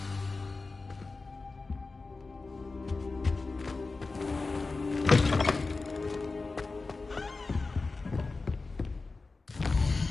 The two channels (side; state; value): right; quieter; 3.8 dB